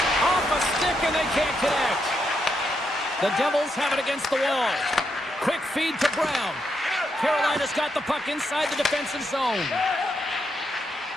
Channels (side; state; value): both; normal; correlation 0.81